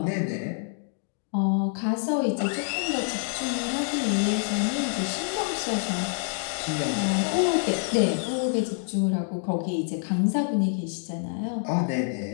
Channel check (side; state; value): right; silent; 60 dB below the other